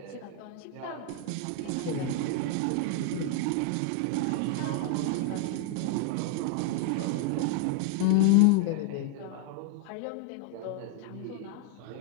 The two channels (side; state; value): both; different; correlation 0.00